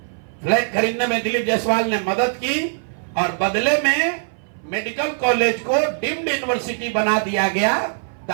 फ्लैट खरीदने में दिलीप जायसवाल ने मदद की और बदले में मेडिकल कॉलेज को डीम्ड यूनिवर्सिटी बना दिया गया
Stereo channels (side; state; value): left; silent; 59 dB below the other